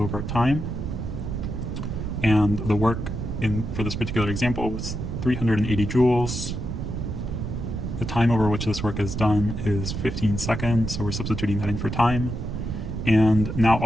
time, and the work for this particular example was 380 joules. The time over which this work is done is 15 seconds, so we're substituting that in for time. And now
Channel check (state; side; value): noise; right; rumble, 4 dB below the sound